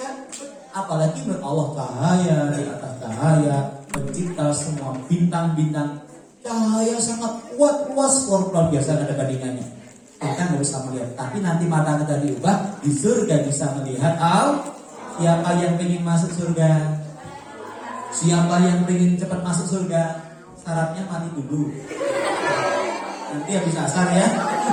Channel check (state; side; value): identical; both; correlation 1.00